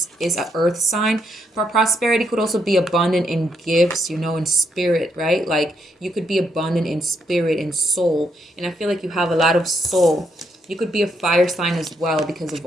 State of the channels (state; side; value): normal; both; correlation 0.77